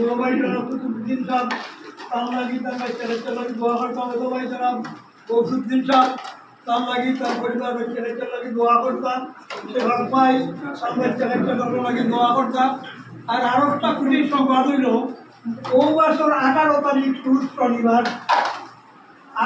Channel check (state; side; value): identical; both; correlation 1.00